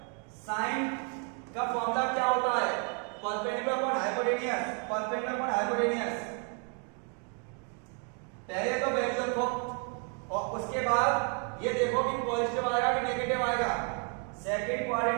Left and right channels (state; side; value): quieter; left; 39.0 dB